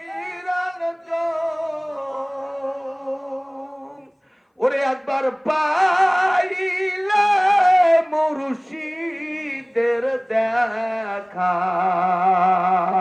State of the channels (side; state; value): both; identical; correlation 1.00